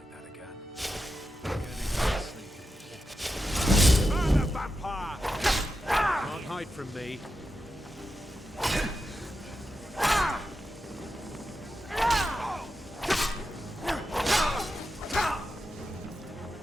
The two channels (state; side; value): normal; both; correlation 0.89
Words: that again. Burn the vampire! Can't hide from me.